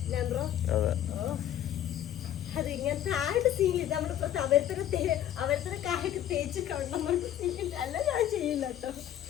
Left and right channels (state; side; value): quieter; right; 11.3 dB